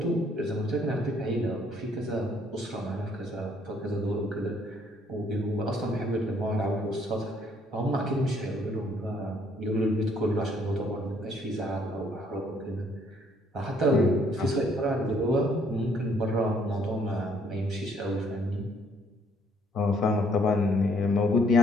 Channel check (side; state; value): both; normal; correlation 0.65